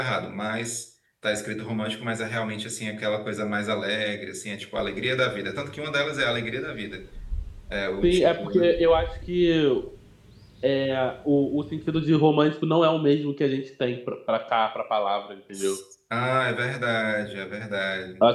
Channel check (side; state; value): both; identical; correlation 1.00